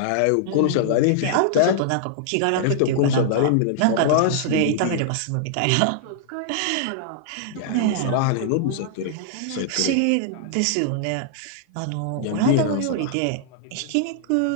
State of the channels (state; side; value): different; both; correlation -0.01